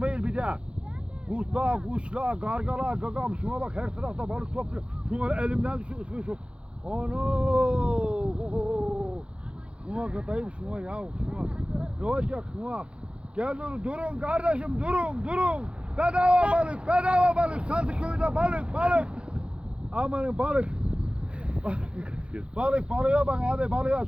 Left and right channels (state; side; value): late; left; 0.058 ms